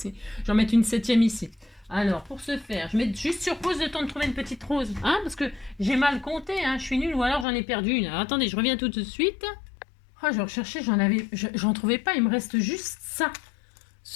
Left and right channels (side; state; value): right; drops out; at 7.5 s